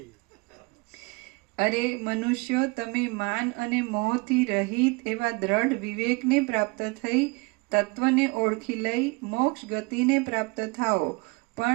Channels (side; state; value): left; quieter; 27.5 dB